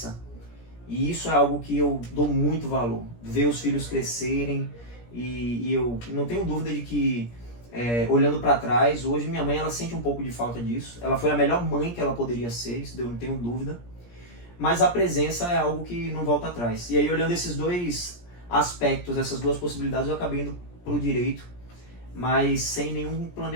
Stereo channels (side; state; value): right; late; 17 ms